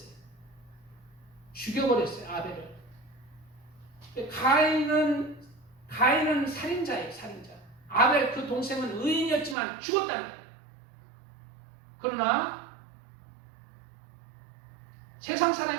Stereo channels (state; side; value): drops out; left; at 9.6 s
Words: 아벨을. 가인은 살인자예요. 아벨 그 동생은 의인이었지만 죽었다는 거예요. 그러나 세상